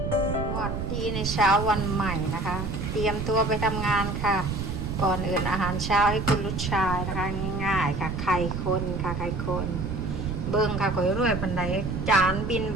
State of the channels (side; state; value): right; noise; rumble, 4 dB below the sound